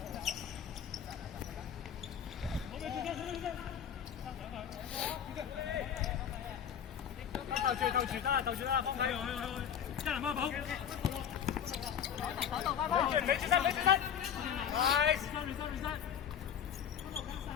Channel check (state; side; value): quieter; right; 8.6 dB